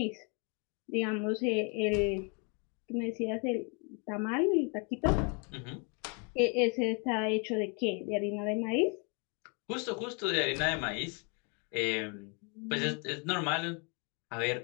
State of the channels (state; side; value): quieter; right; 35.1 dB